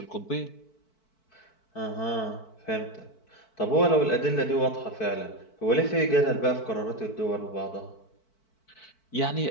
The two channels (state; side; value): late; right; 4.5 ms